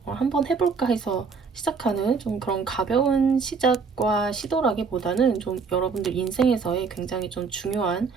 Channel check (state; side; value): quieter; left; 5.1 dB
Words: 한번 해볼까 해서 시작하는 좀 그런 가벼운 시작과 시도라기보다는 좀 여러분들 인생에서의 굉장히 좀 중요한